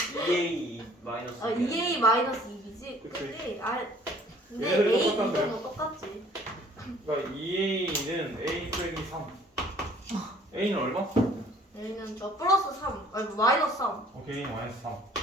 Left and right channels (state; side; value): normal; both; correlation 0.55